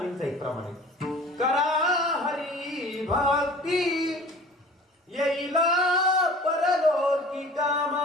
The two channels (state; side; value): normal; both; correlation 0.44